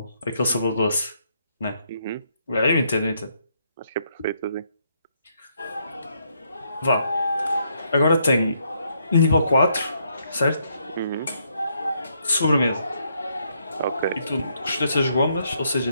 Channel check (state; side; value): inverted; both; correlation -0.75